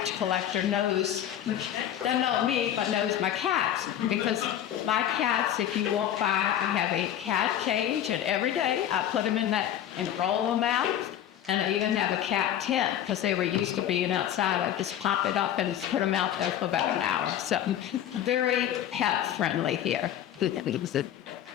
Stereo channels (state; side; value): quieter; right; 11.0 dB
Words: collector doesn't know me, but knows my cats. Because my cats, if you walk by, I have a cat cage, and every day I put them in that and roll them out. And I even have a cat tent because they were used to being outside. I just pop it up and put them out there for about an hour. So very pet friendly here.